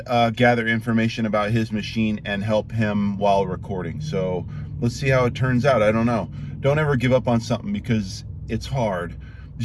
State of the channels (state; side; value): identical; both; correlation 1.00